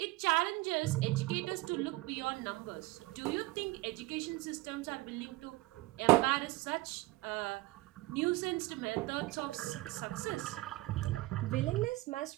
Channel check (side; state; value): left; quieter; 20.5 dB